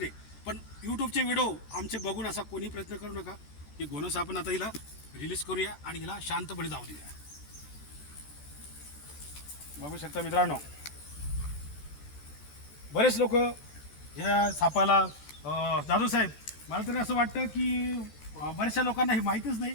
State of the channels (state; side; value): late; right; 14 ms